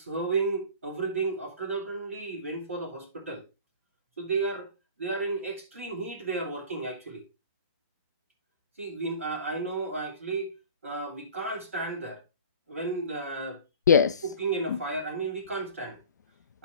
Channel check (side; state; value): both; inverted; correlation -0.42